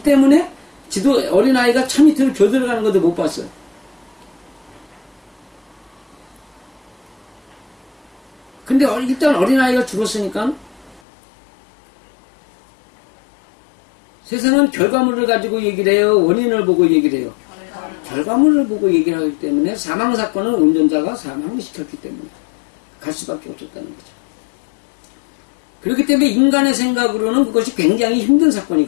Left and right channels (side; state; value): right; drops out; at 11.0 s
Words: 때문에 어린아이가 차 밑으로 겨들어가는 것도 못 봤어요. 근데 일단 어린아이가 죽었으니까 세상은 결과물을 가지고 얘기를 해요? 원인을 보고 얘기를 해요? 결과물을 보고 얘기를 하기 때문에 사망사건은 운전자가 사망을 시켰기 때문에 갈 수밖에 없었다는 거죠. 그렇기 때문에 인간의 생각으로는 그것이 굉장히 힘든